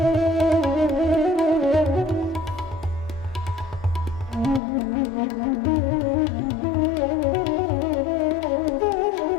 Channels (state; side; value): drops out; right; at 4.6 s